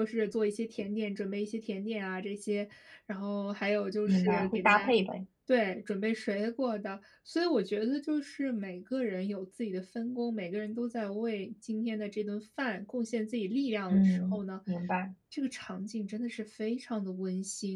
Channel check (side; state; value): both; identical; correlation 1.00